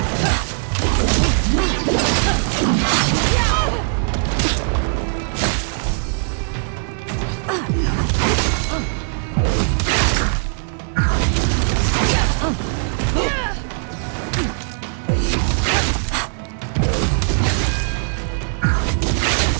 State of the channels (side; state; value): left; silent; 66 dB below the other